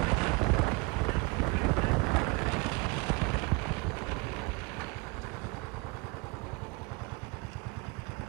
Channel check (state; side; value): quieter; left; 27.4 dB